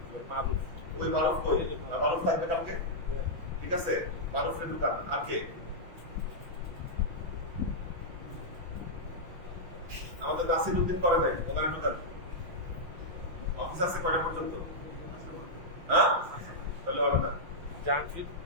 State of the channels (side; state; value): left; late; 5.9 ms